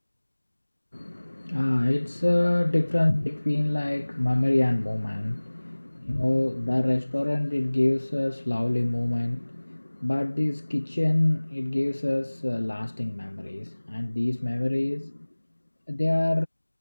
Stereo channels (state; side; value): inverted; both; correlation -1.00